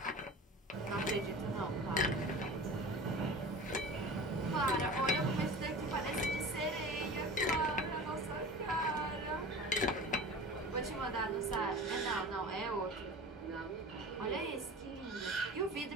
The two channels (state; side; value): normal; both; correlation 0.35